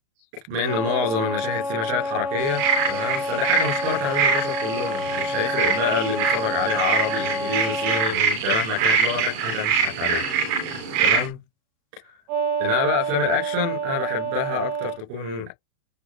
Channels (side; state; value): left; late; 36 ms